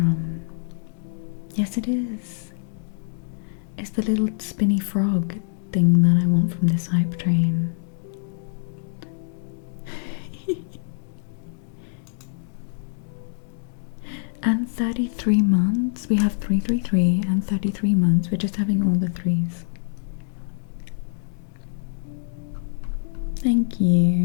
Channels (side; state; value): right; silent; digital silence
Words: Yes, it is. It's the little spinny frog thing that I want from this hype train. And 33 months. We have 333 and 33 months. We're just having all the threes. Thank